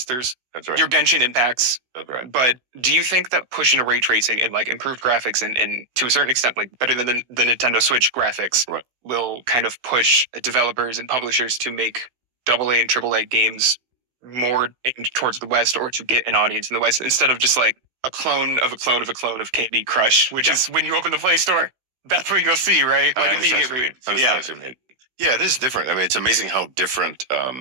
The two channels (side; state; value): left; late; 16 ms